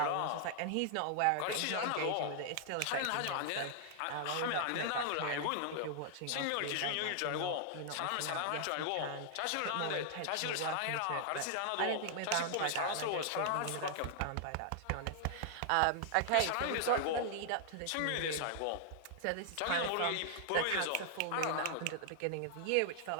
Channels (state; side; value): different; both; correlation -0.01